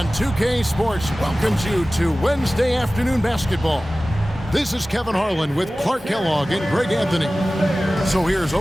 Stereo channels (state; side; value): normal; both; correlation 0.97